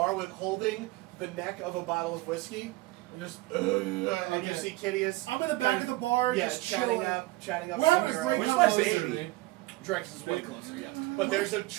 with holding the neck of a bottle of whiskey. And just, and you see Kitteus. I'm in the back of the bar, yeah, just chatting chilling. up. We're having a great Where's my conversation. baby? Drekas is way closer, yeah. But there's a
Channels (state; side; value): quieter; left; 19.9 dB